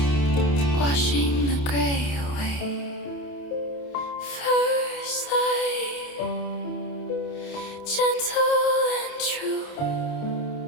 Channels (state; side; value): late; right; 28 ms